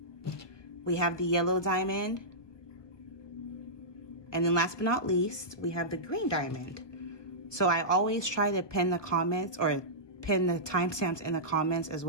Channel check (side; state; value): right; late; 1.2 ms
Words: We have the yellow diamond. And then last but not least, we have the green diamond. So I always try to pin the comments or pin the timestamps in the comments, as